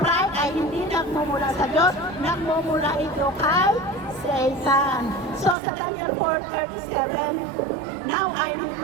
ay hindi nagmumula sa Diyos, nagmumula ito kay Satan. So, sa Daniel 4:37, now I,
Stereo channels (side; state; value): left; drops out; at 5.6 s